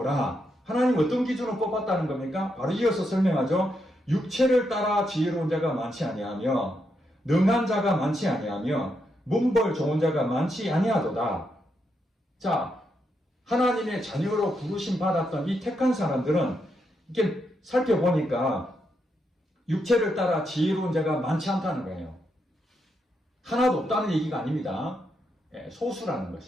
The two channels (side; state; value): both; normal; correlation 0.81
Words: 하나님 어떤 기준으로 뽑았다는 겁니까? 바로 이어서 설명하죠. 육체를 따라 지혜로운 자가 많지 아니하며 능한 자가 많지 아니하며 문벌 좋은 자가 많지 아니하도다. 자, 하나님의 자녀로 부르심 받았던 이 택한 사람들은 이렇게 살펴보니까 육체를 따라 지혜로운 자가 많지 않다는 거예요. 하나도 없다는 얘기가 아닙니다. 소수라는